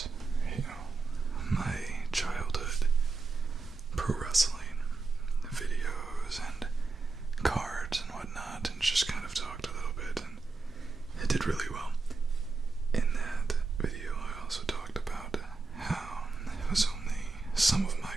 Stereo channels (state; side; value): quieter; left; 3.9 dB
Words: my childhood pro wrestling videos and cards and whatnot, and just kind of talked a little bit, and it did really well. In that video, I also talked about how it was only some of my